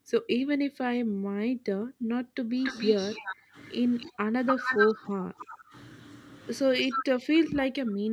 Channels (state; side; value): identical; both; correlation 1.00